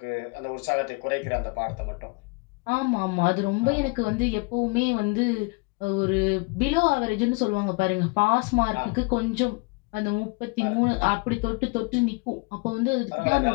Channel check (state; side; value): quieter; right; 29.2 dB